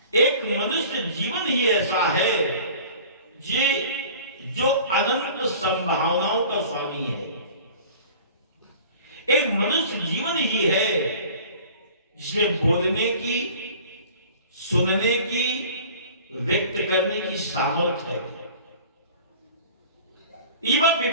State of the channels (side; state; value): both; inverted; correlation -0.45